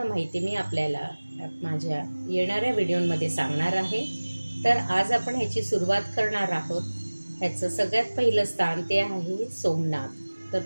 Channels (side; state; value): both; inverted; correlation -1.00